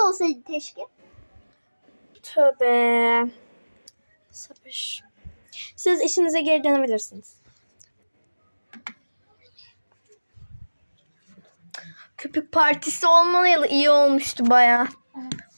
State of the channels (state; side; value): inverted; both; correlation -1.00